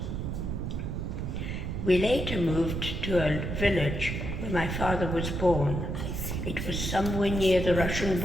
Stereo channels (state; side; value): noise; right; rumble, 3 dB below the sound